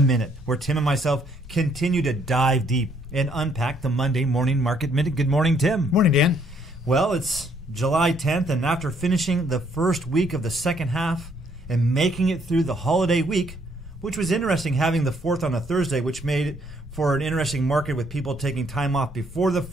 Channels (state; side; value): normal; both; correlation 0.67